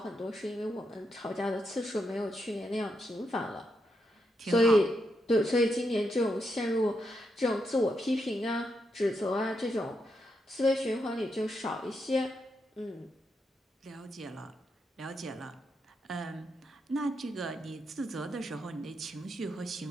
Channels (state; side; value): normal; both; correlation 0.82